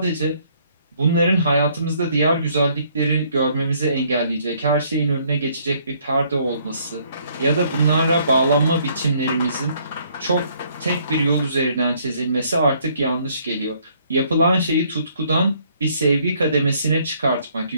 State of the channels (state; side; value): inverted; both; correlation -0.65